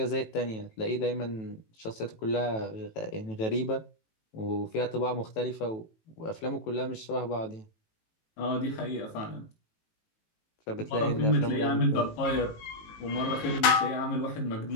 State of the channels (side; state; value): right; late; 18 ms